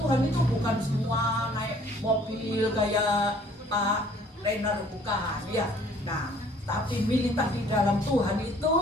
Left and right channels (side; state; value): both; normal; correlation 0.57